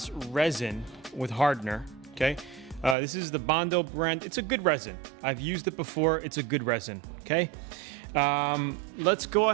resin with hardener, okay? This is the Bondo brand. It's a good resin. I've used it before. It's a good resin, okay? Let's go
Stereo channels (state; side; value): drops out; left; at 3.0 s